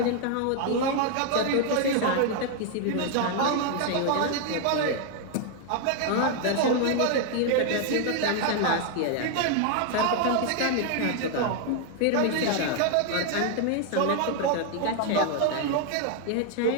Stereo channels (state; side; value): different; both; correlation 0.00